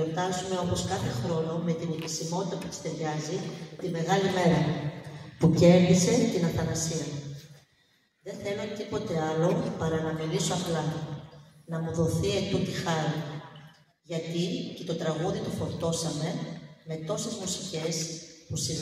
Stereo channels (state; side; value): identical; both; correlation 1.00